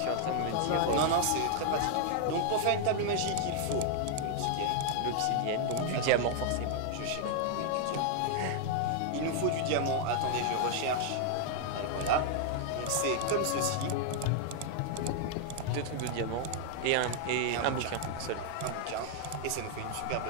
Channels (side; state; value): both; different; correlation 0.00